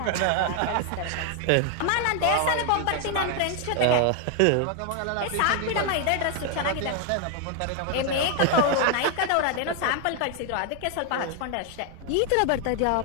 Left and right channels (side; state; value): both; different; correlation 0.00